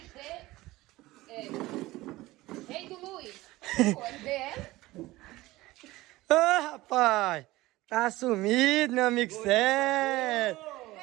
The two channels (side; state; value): left; quieter; 18.6 dB